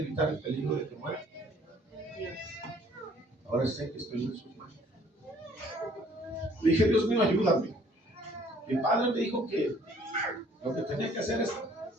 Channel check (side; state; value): both; normal; correlation 0.58